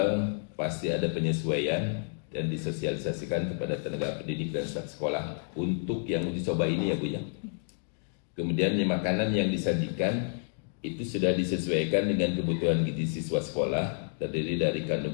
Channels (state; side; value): silent; right; digital silence